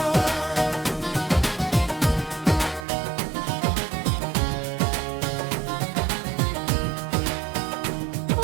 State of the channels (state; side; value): drops out; left; at 2.9 s